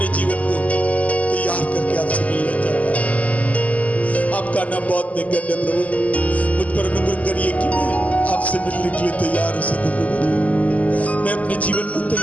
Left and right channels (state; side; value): late; right; 0.072 ms